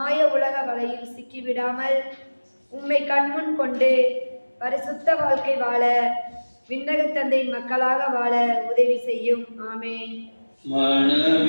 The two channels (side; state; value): both; inverted; correlation -1.00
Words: உலக வலையில் சிக்கிவிடாமல் உம்மை கண்முன் கொண்டு பரிசுத்த வாழ்க்கை வாழ விண்ணக தந்தையின் மக்களாக வாழ உதவி செய்யும். ஆமென்.